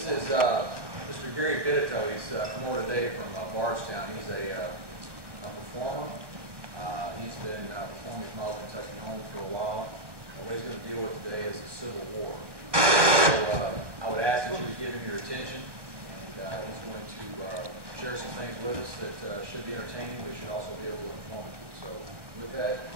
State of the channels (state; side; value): late; left; 1.2 ms